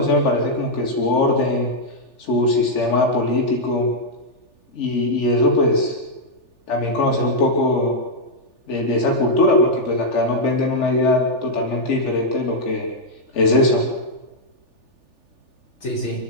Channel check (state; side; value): late; right; 3.4 ms